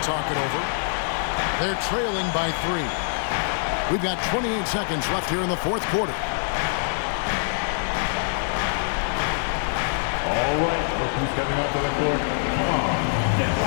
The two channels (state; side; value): silent; right; digital silence